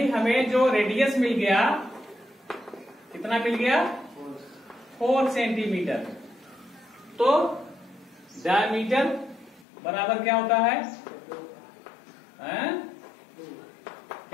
हमें जो रेडियस मिल गया कितना मिल गया 4 सेंटीमीटर। तो डायमीटर बराबर क्या होता है,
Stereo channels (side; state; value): right; drops out; at 9.7 s